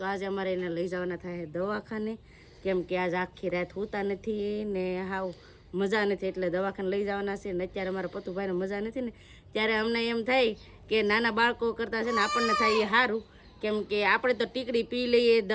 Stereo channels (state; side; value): identical; both; correlation 1.00